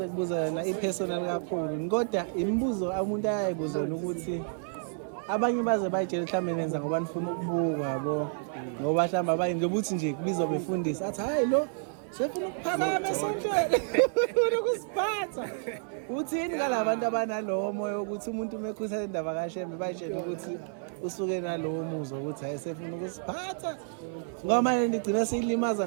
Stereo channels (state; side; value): silent; left; 58 dB below the other